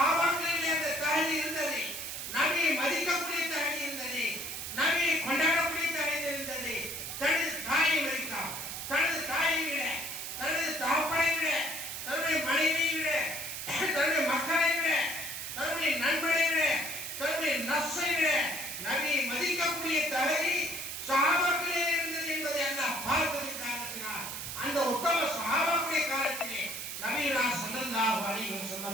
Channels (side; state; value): right; noise; hiss, 6 dB below the sound